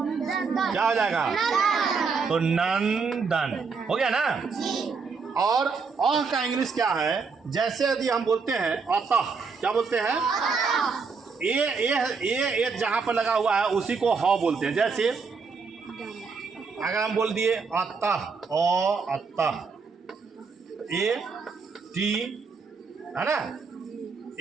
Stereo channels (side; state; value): left; quieter; 5.0 dB